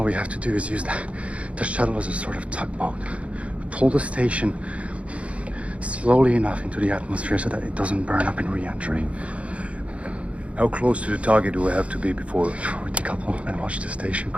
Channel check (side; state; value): left; late; 0.063 ms